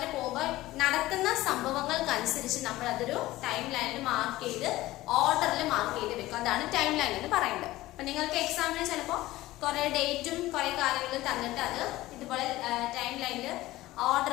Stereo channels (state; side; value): quieter; right; 17.2 dB